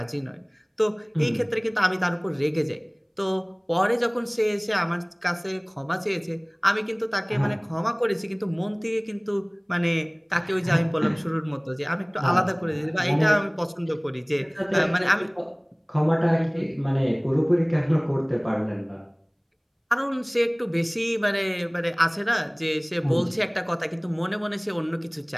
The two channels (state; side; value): identical; both; correlation 1.00